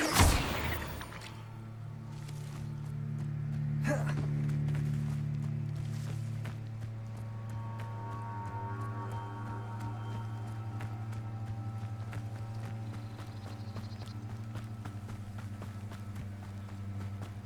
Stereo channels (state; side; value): identical; both; correlation 1.00